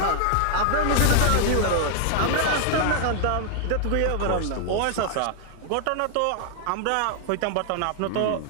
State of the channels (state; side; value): different; both; correlation 0.00